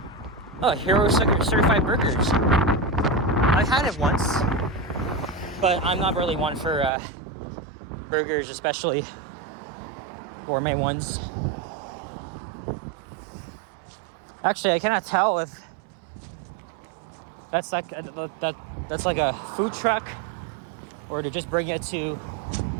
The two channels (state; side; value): drops out; left; at 6.9 s